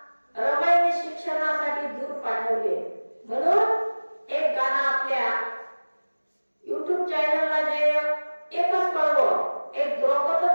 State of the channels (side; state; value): both; inverted; correlation -1.00